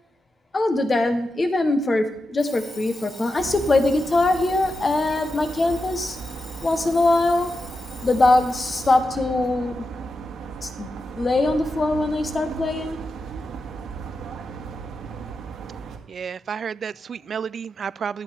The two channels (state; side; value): normal; both; correlation 0.89